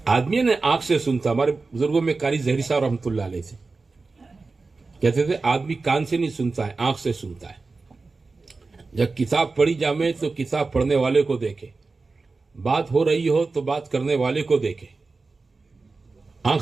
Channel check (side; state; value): left; quieter; 3.9 dB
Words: آدمی نے آنکھ سے سنتا. ہمارے بزرگوں میں قاری ظہری صاحب رحمۃ اللہ علیہ تھے, کہتے تھے آدمی کان سے نہیں سنتا ہے, آنکھ سے سنتا ہے. جب کتاب پڑھی جامے تو کتاب پڑھنے والے کو دیکھے, بات ہو رہی ہو تو بات کرنے والے کو دیکھے.